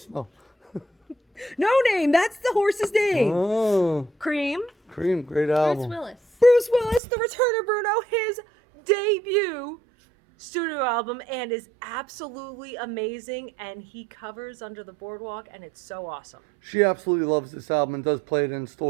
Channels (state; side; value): drops out; left; at 7.0 s